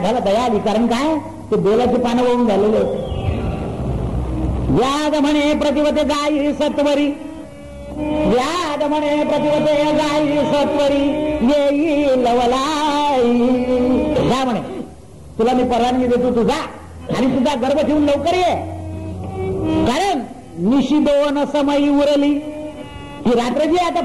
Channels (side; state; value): both; identical; correlation 1.00